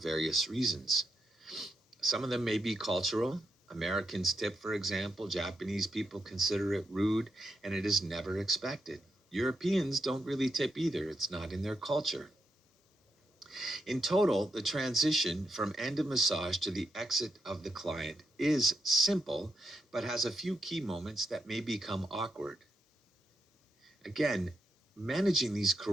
reasons. Some of them may be cultural. Americans tip, for example. Japanese people consider it rude, and it is never expected. Europeans don't really tip either. It's not in their culture. In total, the transition from end of massage to the exit of the client is simple, but has a few key moments that may become awkward. Again, managing these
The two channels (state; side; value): normal; both; correlation 0.82